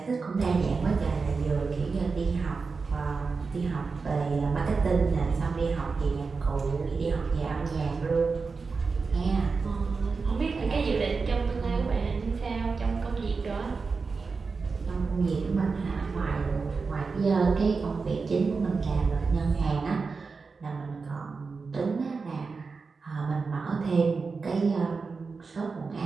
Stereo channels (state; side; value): quieter; left; 4.6 dB